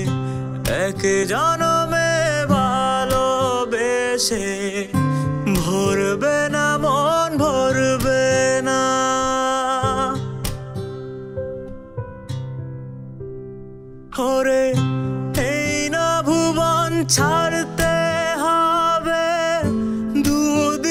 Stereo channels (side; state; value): both; identical; correlation 1.00